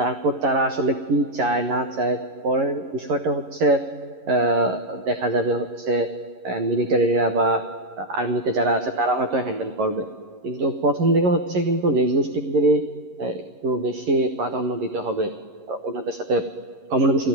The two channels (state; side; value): late; left; 11 ms